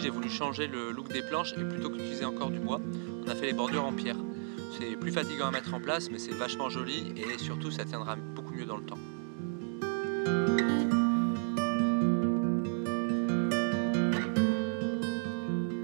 j'ai voulu changer le look des planches et plutôt qu'utiliser encore du bois, on a fait les bordures en pierre. C'est plus fatigant à mettre en place, mais c'est vachement joli et surtout ça tiendra beaucoup mieux dans le temps.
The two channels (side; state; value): left; silent; 56 dB below the other